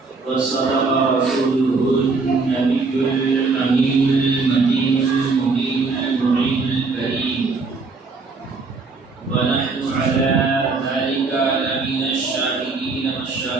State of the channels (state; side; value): quieter; left; 4.1 dB